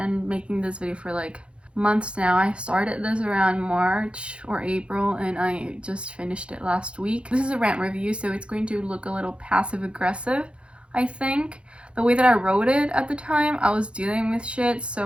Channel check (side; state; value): left; late; 0.058 ms